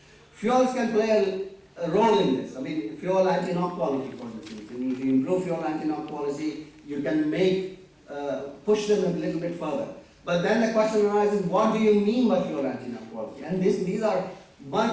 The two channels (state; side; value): identical; both; correlation 1.00